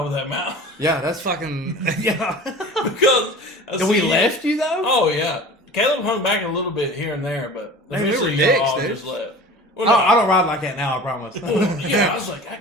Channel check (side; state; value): both; normal; correlation 0.39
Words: of that mountain. Yeah, that's fucking... Yeah. Because... Did we left you, though? Oh, yeah. Caleb hung back a little bit here and there, but we were y'all dicks, all dude. just left. Well, I don't ride like that now, I promise. Yeah, I was like, I